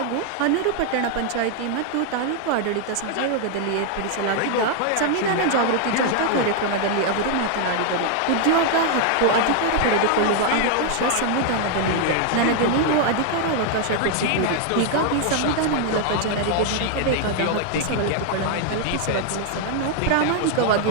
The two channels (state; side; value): different; both; correlation 0.00